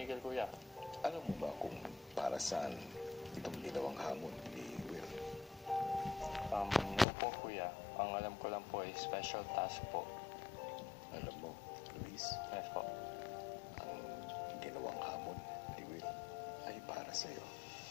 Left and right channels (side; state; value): right; drops out; at 7.1 s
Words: kuya. Alam mo ba kung para saan itong ginawang hamon ni Will? Po, kuya. Ang alam ko lang po ay special task po. Alam mo, Luis, Yes po. ang ginawang hamon ni Will ay para sa'yo.